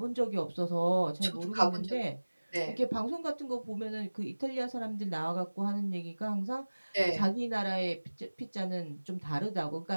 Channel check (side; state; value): both; inverted; correlation -1.00